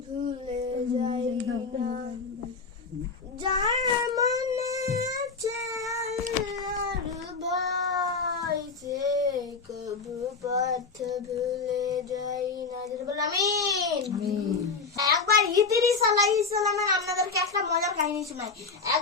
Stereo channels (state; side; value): quieter; right; 4.6 dB